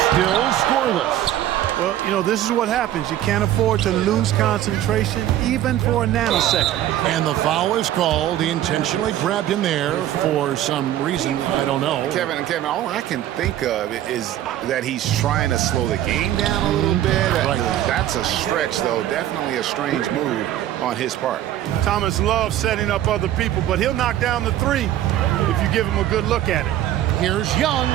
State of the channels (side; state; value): left; quieter; 12.5 dB